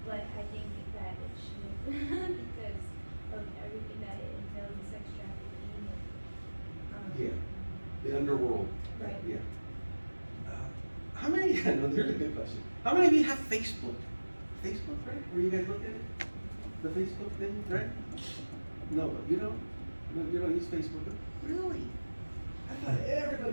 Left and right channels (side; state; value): both; inverted; correlation -1.00